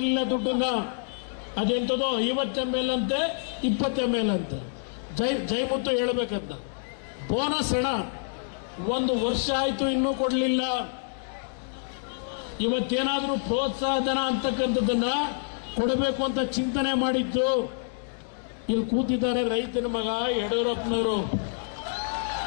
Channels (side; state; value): right; silent; digital silence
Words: ದುಡ್ಡನ್ನ. ಅದೆಂಥದೋ 50 ml ಅಂತೆ, 20 ml ಅಂತೆ. ಜೈಮುತ್ತು ಹೇಳಬೇಕಂತ. ಬೋನಸ್ ಹಣ 1 ವರ್ಷ ಆಯ್ತು ಇನ್ನೂ ಕೊಡಲಿಲ್ಲ. ಇವತ್ತೇನಾದ್ರೂ ಪ್ರೋತ್ಸಾಹ ಧನ ಅಂತಕ್ಕಂಥದ್ದನ್ನ ಕೊಡಬೇಕು ಅಂತ ಚಿಂತನೆ ಮಾಡಿದ್ದು. ಇಲ್ಲಿ ಕೂತಿದ್ದಾರೆ ರೈತನ ಮಗ ಯಡಿಯೂರಪ್ಪನವರು.